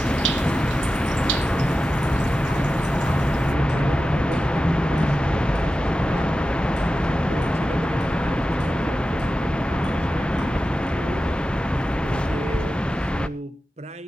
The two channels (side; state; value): both; normal; correlation 0.93